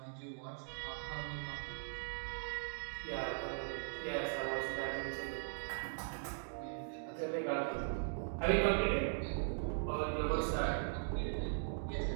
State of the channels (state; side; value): silent; left; digital silence